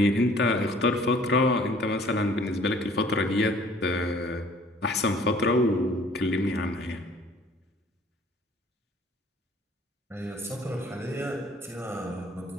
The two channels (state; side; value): normal; both; correlation 0.54